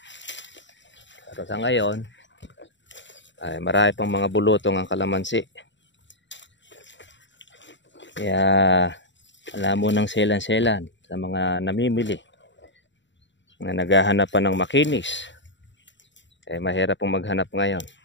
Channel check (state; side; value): late; right; 0.53 ms